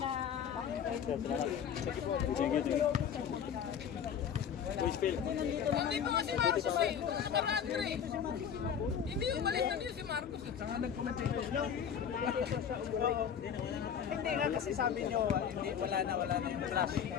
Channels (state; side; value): quieter; right; 8.1 dB